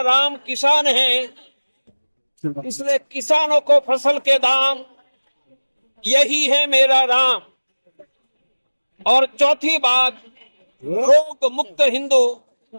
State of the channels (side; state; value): both; inverted; correlation -1.00